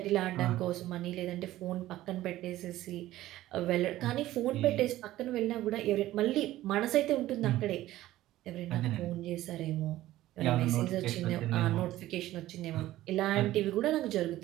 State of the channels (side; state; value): left; quieter; 15.2 dB